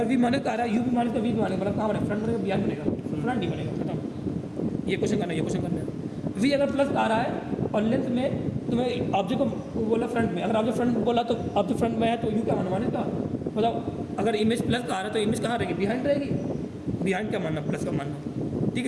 वी माने आ रहा है यू भी माने तो वी भी माने, मतलब कहाँ बनेगा फ्रंट बनेगा बिहार बनेगा, फ्रंट नहीं बनेगा, खत्म, ये क्वेश्चन करना, ये क्वेश्चन करना। वी अगर प्लस आ रहा है और लेंथ में तुम्हें ऑब्जेक्ट को बोला फ्रंट में, अगर ऑब्जेक्ट फ्रंट बोला तो ऑब्जेक्ट फ्रंट में है तो यू क्या मानना का, बताओ अगर इमेज प्लस का आ रहा है तो इमेज कहाँ रहेगी बिहाइंड रहेगी, बिहाइंड क्या मानना प्लस का मानना, ठीक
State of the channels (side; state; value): both; identical; correlation 1.00